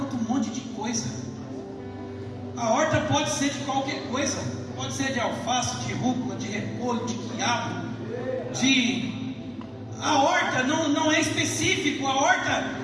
um monte de coisa. A horta pode ser de qualquer coisa. Pode ser de alface, de rúcula, de repolho, de quiabo, A horta não é específico. A horta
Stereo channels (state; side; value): identical; both; correlation 1.00